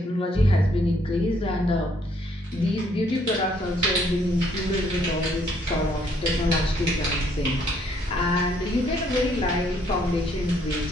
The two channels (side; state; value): both; normal; correlation 0.67